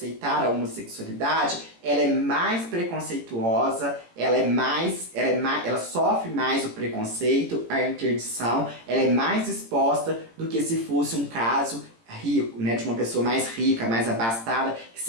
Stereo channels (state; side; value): late; left; 18 ms